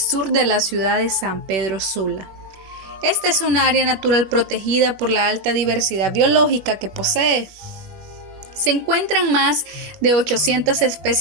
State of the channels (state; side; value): late; left; 21 ms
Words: de la ciudad de San Pedro Sula. Esta es un área natural protegida por la alta diversidad biológica que posee. Se encuentran más de 800